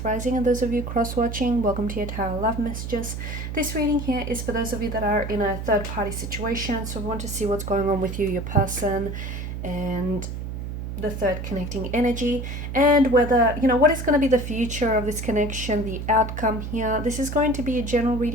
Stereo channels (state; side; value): noise; right; hum, 6 dB below the sound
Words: Rising, and those of you cross-watching, welcome to your Tarot Love Messages. This reading here is for those of you that are in a third-party situation, so we want to see what's going on with you, your person, and the third connecting energy, and whether, what is going to be the future of this connection, the outcome here. This is going to be a general